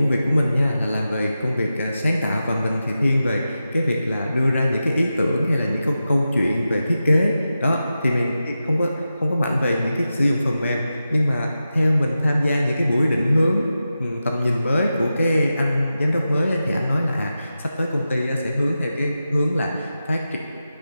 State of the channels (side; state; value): both; inverted; correlation -0.91